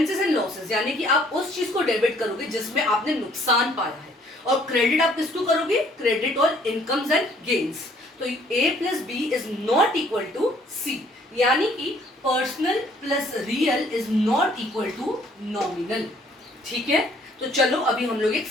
एंड लॉसेस, यानी कि आप उस चीज को डेबिट करोगे जिसमें आपने नुकसान पाया है, और क्रेडिट आप किसको करोगे, क्रेडिट और इनकम्स एंड गेन्स। तो A plus B is not equal to C, यानी कि personal plus real is not equal to nominal, ठीक है। तो चलो अभी हम लोग एक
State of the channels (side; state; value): both; normal; correlation 0.61